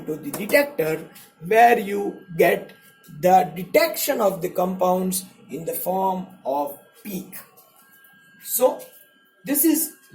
the detector, where you get the detection of the compounds in the form of peak. So this is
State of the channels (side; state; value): both; identical; correlation 1.00